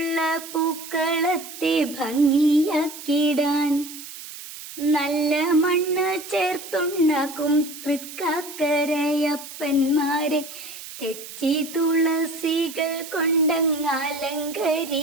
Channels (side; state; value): right; noise; hiss, 13 dB below the sound